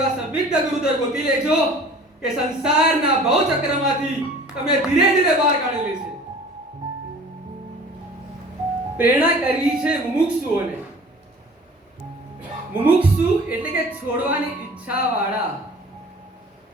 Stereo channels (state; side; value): normal; both; correlation 0.46